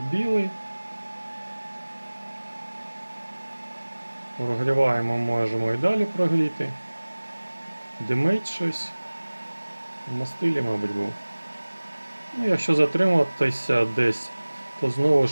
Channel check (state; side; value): inverted; both; correlation -1.00